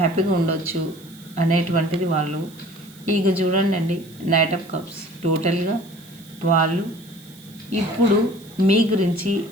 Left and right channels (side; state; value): right; noise; hiss, 24 dB below the sound